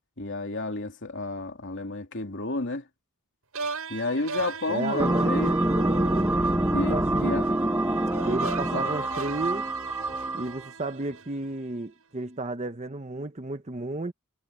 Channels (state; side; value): normal; both; correlation 0.60